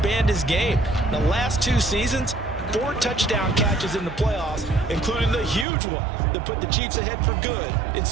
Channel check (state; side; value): drops out; left; at 5.7 s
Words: his game. The last 2 seasons, 4 touchdown catches in the playoffs, including the huge one that put the Chiefs ahead for good in